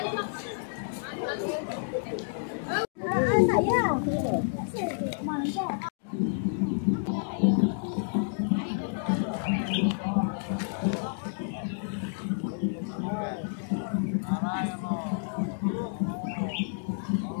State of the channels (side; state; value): right; silent; digital silence